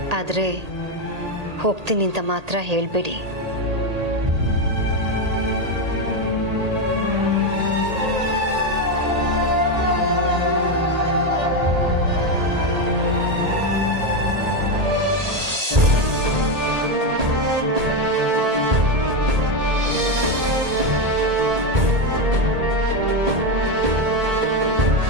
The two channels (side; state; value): left; late; 1.8 ms